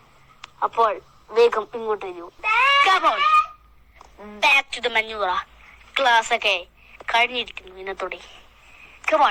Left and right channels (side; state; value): both; identical; correlation 1.00